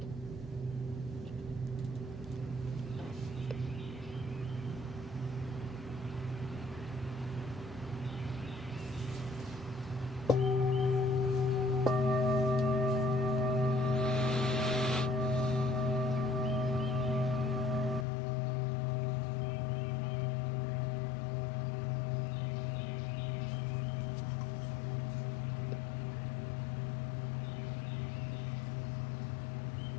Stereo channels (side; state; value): right; drops out; at 18.1 s